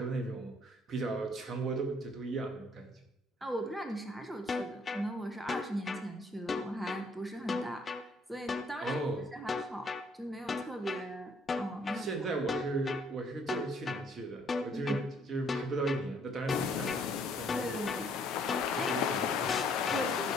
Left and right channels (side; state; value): both; normal; correlation 0.64